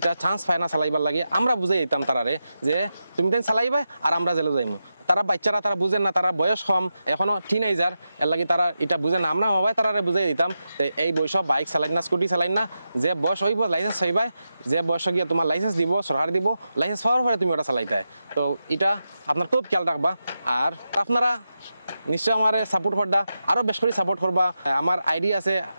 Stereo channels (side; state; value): both; inverted; correlation -0.89